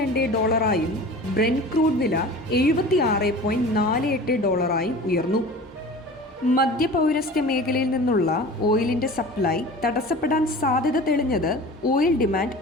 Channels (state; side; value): normal; both; correlation 0.38